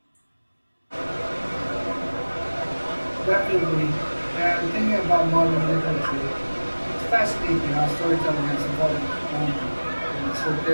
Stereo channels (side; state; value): both; inverted; correlation -1.00